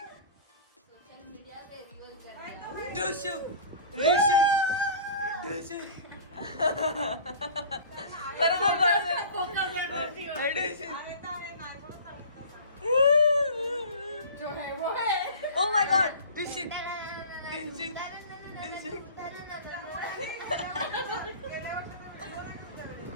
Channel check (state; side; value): inverted; both; correlation -0.40